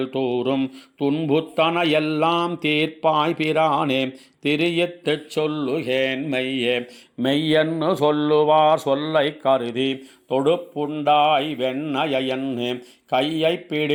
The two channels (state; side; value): identical; both; correlation 1.00